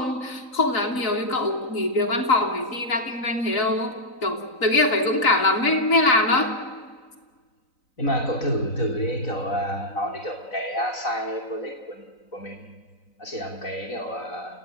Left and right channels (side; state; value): right; late; 3.9 ms